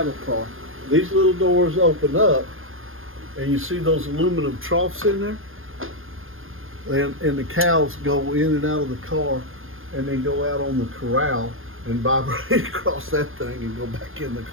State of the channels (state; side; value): late; left; 0.60 ms